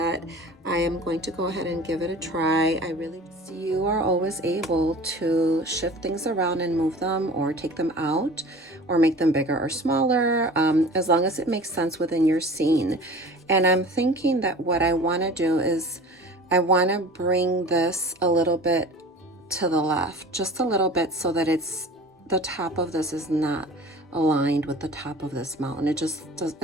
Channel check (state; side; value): normal; both; correlation 0.41